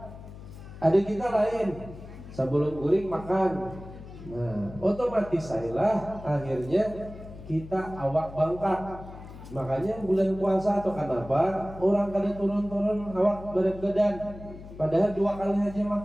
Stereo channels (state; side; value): noise; left; hum, 15 dB below the sound